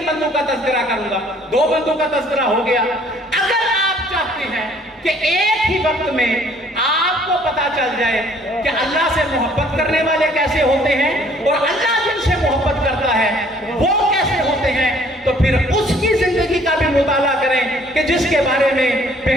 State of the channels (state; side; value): normal; both; correlation 0.59